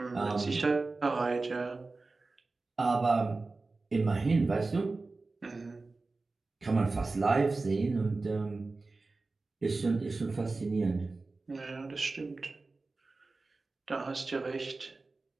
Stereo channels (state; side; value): quieter; left; 3.6 dB